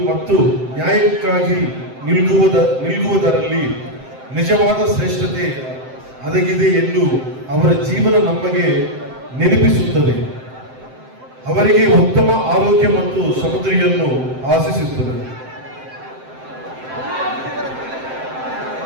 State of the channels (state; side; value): late; left; 7.7 ms